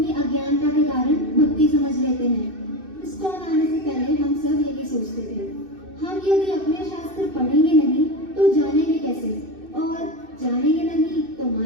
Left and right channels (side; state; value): left; late; 2.6 ms